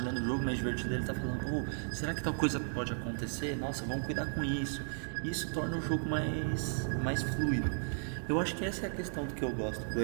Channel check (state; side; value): silent; left; digital silence